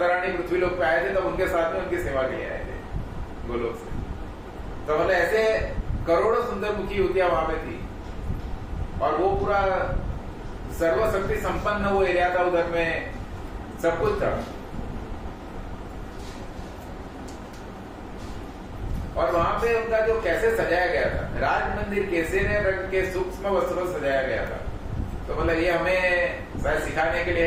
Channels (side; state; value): both; identical; correlation 1.00